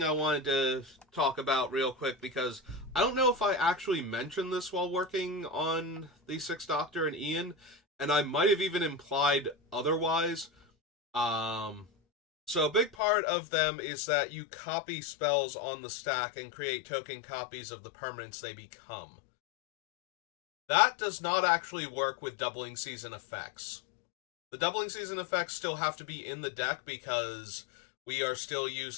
I wanted to talk about real quick, because I don't know if I actually mentioned this while working on the Sixth Doctor and Ian, and I might have even implied otherwise. So a big part of them is that you copy spells on the stack and create token copies of the permanents they become. That does not actually work with doubling season effects. The doubling season effects still have to be in the deck because we are still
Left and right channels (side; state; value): right; drops out; at 13.0 s